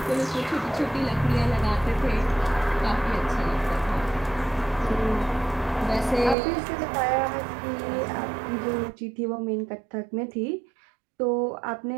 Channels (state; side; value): drops out; left; at 6.4 s